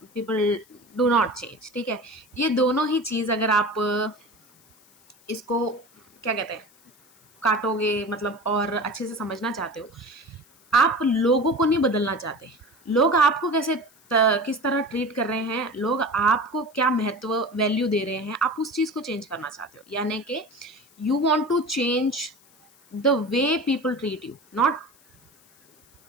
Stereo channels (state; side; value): noise; left; hiss, 29 dB below the sound